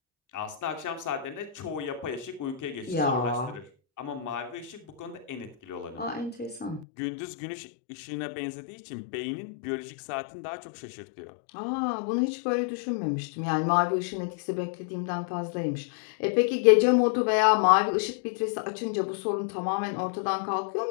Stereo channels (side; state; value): right; drops out; at 6.9 s